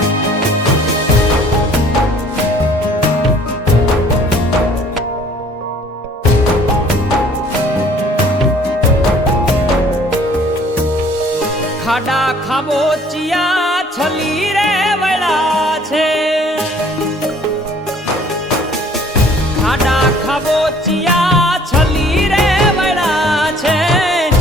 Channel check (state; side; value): normal; both; correlation 0.55